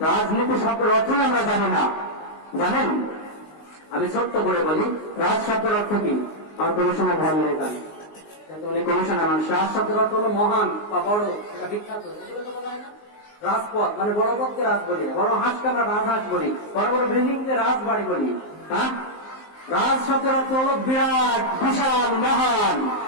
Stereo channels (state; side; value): late; right; 19 ms